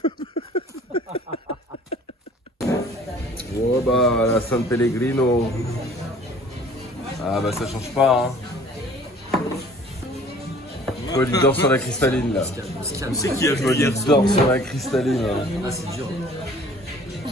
Oh bah, la San Pellegrino. Ah bah ça change pas, hein. Paul il dort sur la cristalline là. C'est qui a joué Paul hier il dort sur la cristalline là. Ah, c'est dur.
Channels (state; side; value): normal; both; correlation 0.52